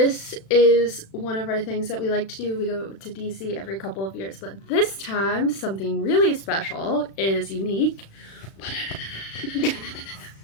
is one of our things that we like to do. We go to DC every couple of years. But this time, something really special is unique.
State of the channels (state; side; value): late; right; 36 ms